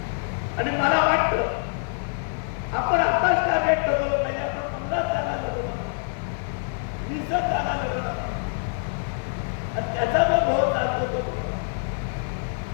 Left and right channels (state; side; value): silent; right; 61 dB below the other